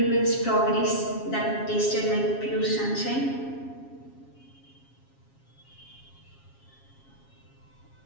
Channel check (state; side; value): late; right; 7.3 ms